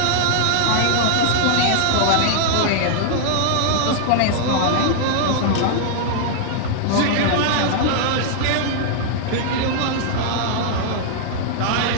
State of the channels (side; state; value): both; different; correlation 0.00